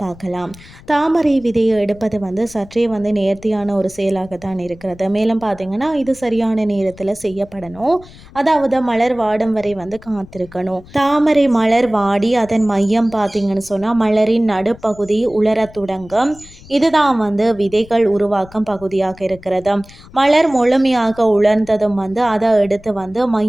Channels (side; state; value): left; noise; rumble, 21 dB below the sound